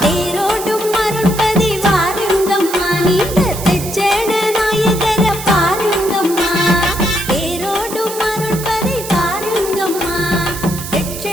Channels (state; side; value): noise; right; hiss, 9 dB below the sound